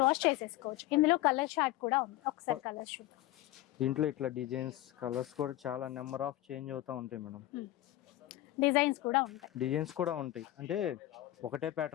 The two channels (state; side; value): quieter; right; 15.6 dB